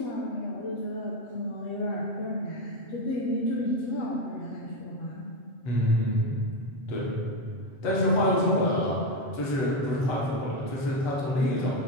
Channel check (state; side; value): late; right; 7.6 ms